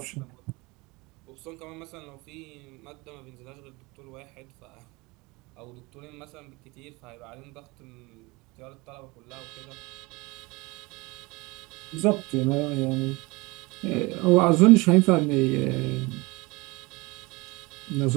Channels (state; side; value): quieter; left; 24.5 dB